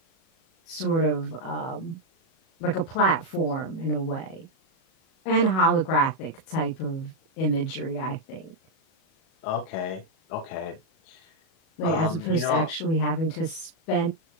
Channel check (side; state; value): right; late; 37 ms